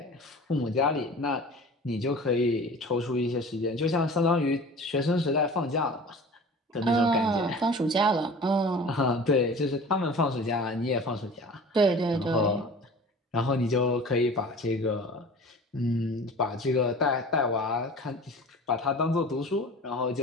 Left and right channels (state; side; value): normal; both; correlation 0.40